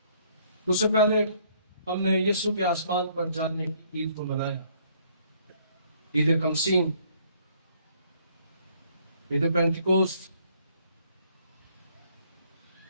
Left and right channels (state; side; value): inverted; both; correlation -0.64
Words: اس سے پہلے ہم نے یسوع کے آسمان پر جانے کی عید کو منایا، عید کمسین، عید پینتیکوست۔